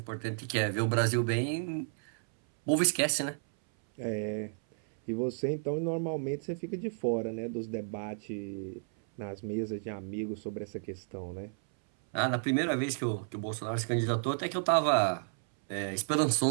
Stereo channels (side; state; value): left; silent; 56 dB below the other